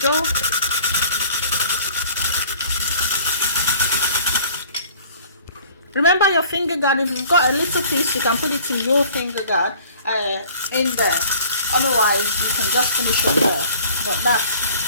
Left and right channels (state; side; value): inverted; both; correlation -0.51